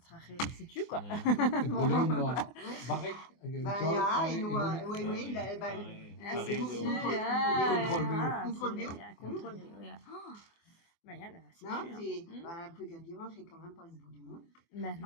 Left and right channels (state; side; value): late; right; 24 ms